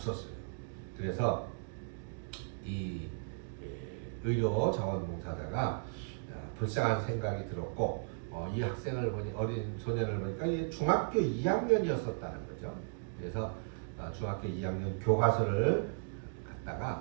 그래서 이 의료 자원봉사자가 불쌍한 생각이 들었고 이 학생을 보니 어린 소년을 보니까 중학교 2학년이었었다는 거죠. 그래서 중학교 2학년 교과서를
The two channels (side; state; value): left; silent; digital silence